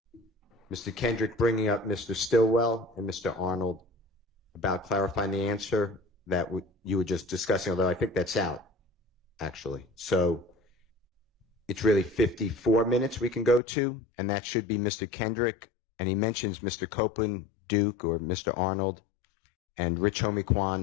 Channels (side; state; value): right; drops out; at 13.6 s